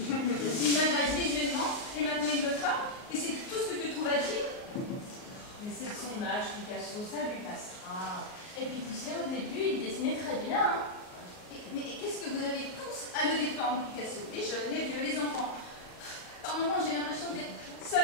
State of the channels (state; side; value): late; right; 38 ms